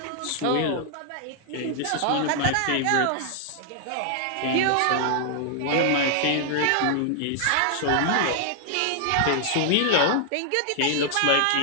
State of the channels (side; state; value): both; different; correlation -0.01